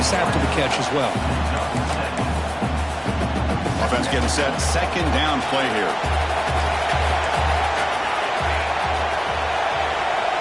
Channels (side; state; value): both; identical; correlation 1.00